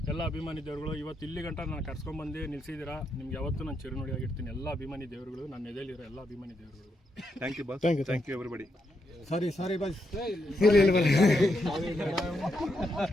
ಎಲ್ಲ ಅಭಿಮಾನಿ ದೇವರುಗಳು ಇವತ್ತು ಇಲ್ಲಿ ಗಂಟ ನಾನು ಕರ್ಸ್ಕೊಂಡ್ಬಂದು ನಿಲ್ಸಿದ್ದೀರಾ. ನಿಮ್ಗೆ ಯಾವತ್ತೂ ನಾನು ಚಿರುನುಡಿಯಾಗಿರ್ತೀನಿ. ಎಲ್ಲ ಅಭಿಮಾನಿ ದೇವರುಗಳು, ನನ್ನ ಎದೆಯಲ್ಲಿರೋ ಎಲ್ಲ ಅಭಿಮಾನಿ ದೇವರುಗಳು. Thank you boss. Thank you everybody. Sorry boss.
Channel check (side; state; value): both; normal; correlation 0.81